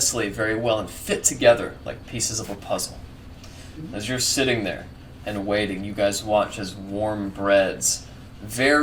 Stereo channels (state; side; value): identical; both; correlation 1.00